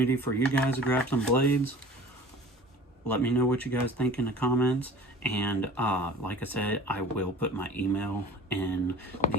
for you guys to grab some blades. Let me know what you guys think in the comments. And like I said, I will put my email in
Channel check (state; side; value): normal; both; correlation 0.44